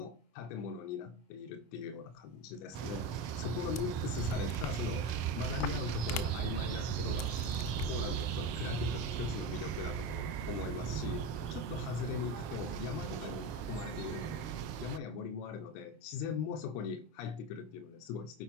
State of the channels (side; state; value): right; late; 25 ms